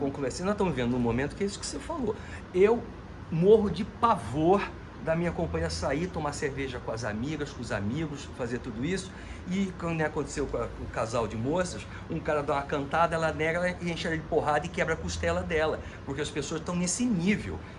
assim, nós estamos vivendo num momento que é isso que você falou. Eu morro de pavor da minha companhia sair, tomar cerveja com as amigas, com os amigos, fazer tudo isso. E quando aconteceu com o casal de moças, um cara dá uma cantada, ela nega e enche ela de porrada e quebra a costela dela, porque as pessoas estão nesse nível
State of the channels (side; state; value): both; identical; correlation 1.00